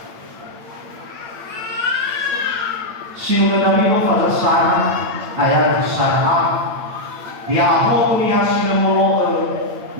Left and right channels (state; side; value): late; left; 8.7 ms